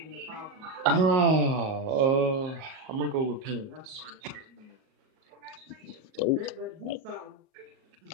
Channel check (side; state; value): left; late; 38 ms